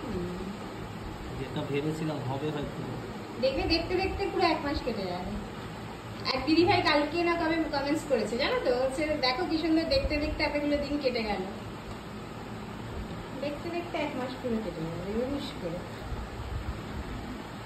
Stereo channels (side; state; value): both; identical; correlation 1.00